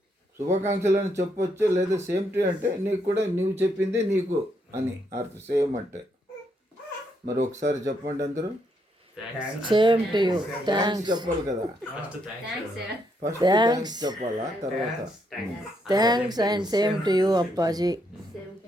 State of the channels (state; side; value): normal; both; correlation 0.76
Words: శుభాకాంక్షలు అని చెప్పొచ్చు, లేదా సేమ్ టు అంటే నీకు కూడా నువ్వు చెప్పింది నీకు అని అర్థం. సేమ్ అంటే మరి ఒకసారి చెప్పండి అందరూ. Same to you. థ్యాంక్స్ చెప్పాలి కదా, ఫస్ట్ థ్యాంక్స్ చెప్పాలా, తర్వాత thanks and same to you Appaji.